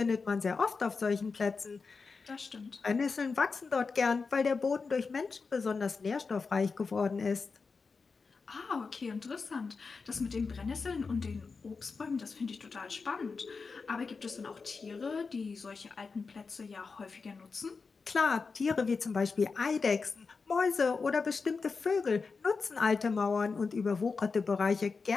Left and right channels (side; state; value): right; quieter; 4.7 dB